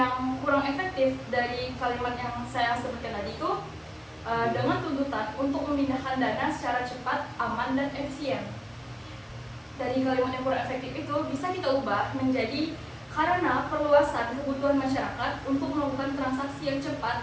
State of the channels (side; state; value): both; identical; correlation 1.00